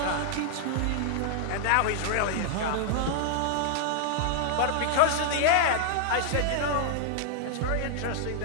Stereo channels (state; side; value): different; both; correlation -0.01